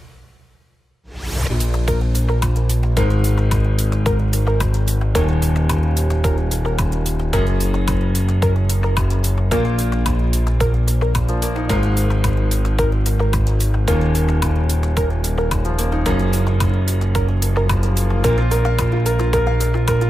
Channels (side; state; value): both; normal; correlation 0.93